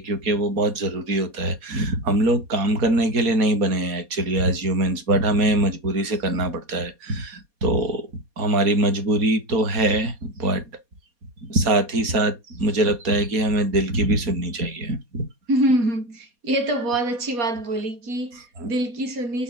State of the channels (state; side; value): late; left; 4.2 ms